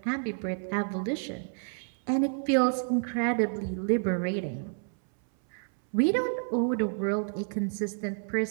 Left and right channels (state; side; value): silent; left; 58 dB below the other